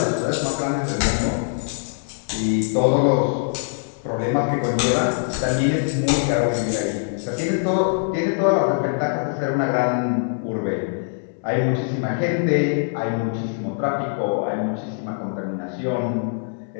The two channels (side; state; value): right; silent; digital silence